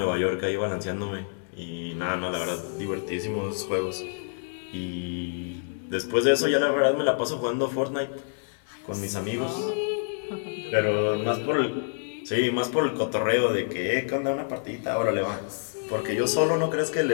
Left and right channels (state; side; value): silent; right; digital silence